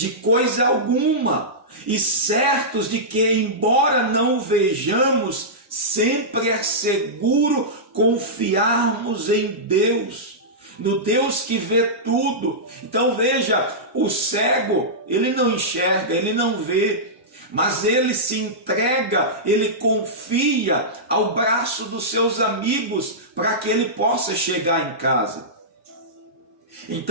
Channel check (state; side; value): normal; both; correlation -0.14